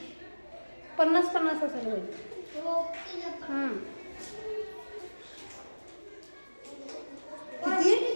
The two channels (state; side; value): inverted; both; correlation -1.00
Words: 50-50 असेल होईल. किती